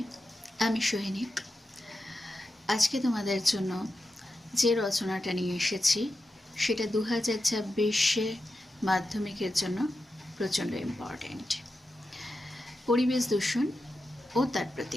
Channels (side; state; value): both; normal; correlation 0.90